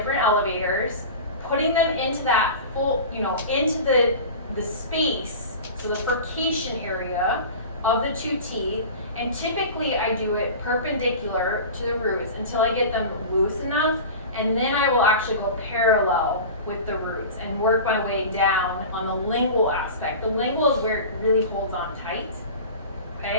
elevators, putting them into that full, into the space, so the furcation area of the two teeth. And typically I do it perpendicular to the roots until I get them loose enough, and then I will actually go parallel with the roots and work my way down on the lingual aspect. The lingual is where it really holds on tight,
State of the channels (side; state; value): both; inverted; correlation -0.33